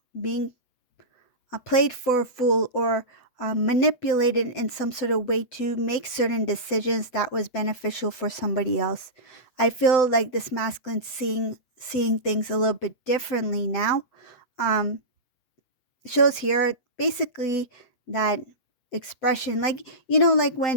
played for a fool or manipulated in some sort of way to make certain decisions that was beneficial for somebody else. I feel like this masculine seeing things a little bit differently now. Um, Shows here basically that expression, like like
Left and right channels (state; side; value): late; right; 8.0 ms